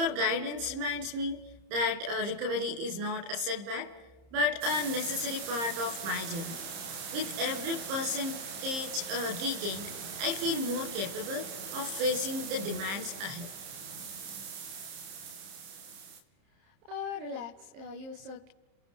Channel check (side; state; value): left; late; 30 ms